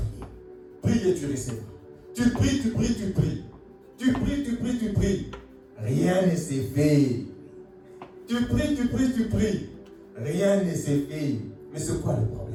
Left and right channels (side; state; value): both; identical; correlation 1.00